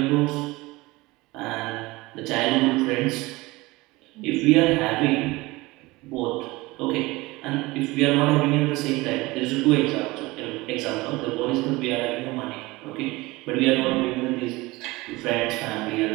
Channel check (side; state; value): left; quieter; 21.5 dB